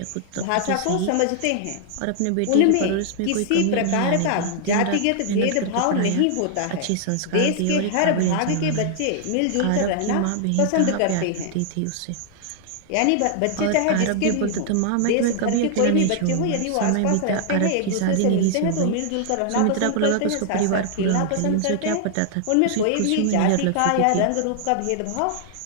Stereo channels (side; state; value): both; different; correlation -0.01